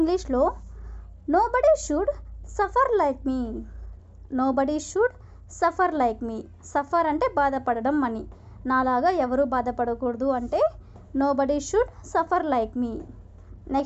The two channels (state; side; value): identical; both; correlation 1.00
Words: nobody should suffer like me. Nobody should suffer like me. Suffer అంటే బాధపడడం అని. నాలాగా ఎవరు బాధపడకూడదు అంటే nobody should suffer like me.